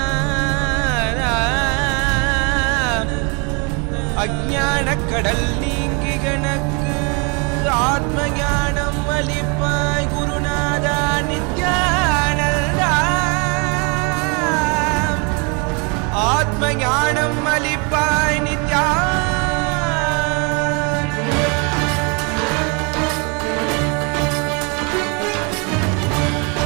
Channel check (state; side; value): quieter; left; 33.1 dB